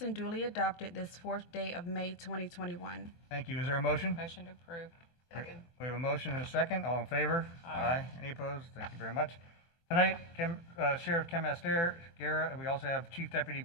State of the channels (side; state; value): right; late; 24 ms